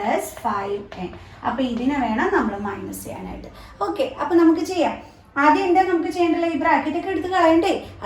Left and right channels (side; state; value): both; identical; correlation 1.00